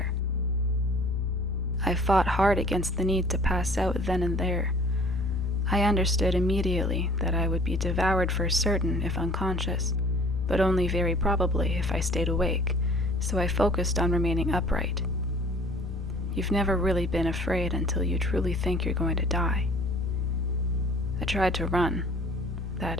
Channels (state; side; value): normal; both; correlation 0.52